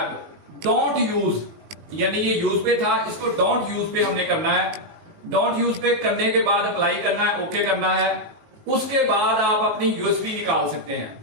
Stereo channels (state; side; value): late; left; 19 ms